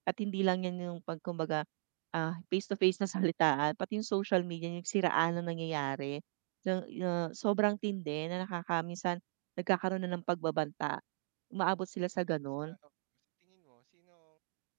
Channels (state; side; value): silent; left; digital silence